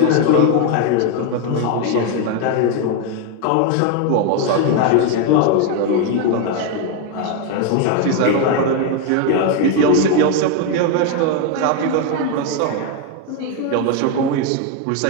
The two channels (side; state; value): both; different; correlation 0.01